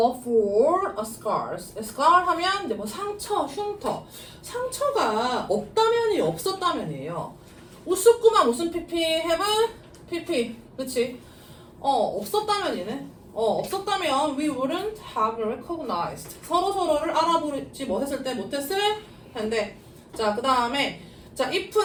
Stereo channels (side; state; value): both; identical; correlation 1.00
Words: for a scars. scar 하면 이제 뭐 상처, 흉터. 상처가 없다면이 없었다면이에요. 우스꾸만 무슨 PP? have PP. 그치? 없었다면이네. 없었다면 we wouldn't have recognized. 서로서로를 알아보지 못했을 때 못했을 텐데. 자, 그 다음에 자,